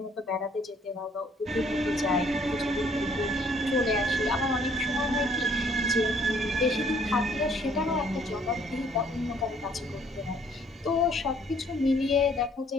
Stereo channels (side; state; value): both; normal; correlation 0.62